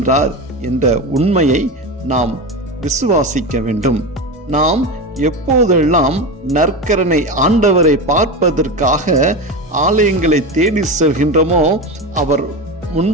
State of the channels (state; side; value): normal; both; correlation 0.21